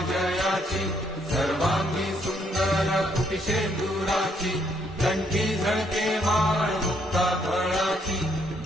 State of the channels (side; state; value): both; normal; correlation 0.71